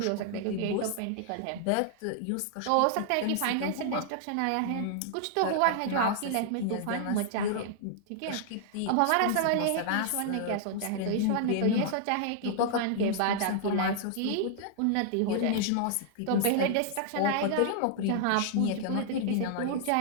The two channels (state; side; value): different; both; correlation -0.01